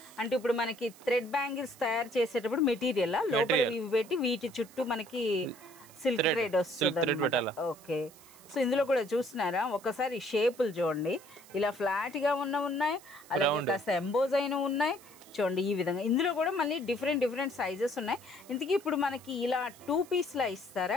అంటే ఇప్పుడు మనకి థ్రెడ్ బ్యాంగిల్స్ తయారు చేసేటప్పుడు మెటీరియల్ లోపల ఇవి పెట్టి వీటి చుట్టూ మనకి సిల్క్ థ్రెడ్ వస్తుంది. ఓకే, సో ఇందులో కూడా చూస్తున్నారా ఒకసారి షేపులు చూడండి, ఇలా ఫ్లాట్ గా ఉన్నాయి, అలాగే కాస్త ఎంబోజ్ అయిన ఉన్నాయి చూడండి ఈ విధంగా. ఇందులో కూడా మళ్ళీ డిఫరెంట్ సైజెస్ ఉన్నాయి. ఇంతకీ ఇప్పుడు మనకి ఇలా 2 పీస్ లా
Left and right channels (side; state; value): right; noise; hiss, 22 dB below the sound